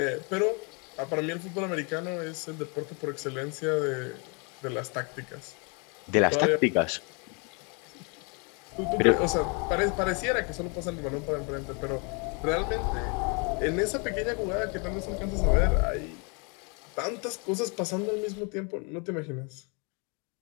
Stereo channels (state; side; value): quieter; right; 34.0 dB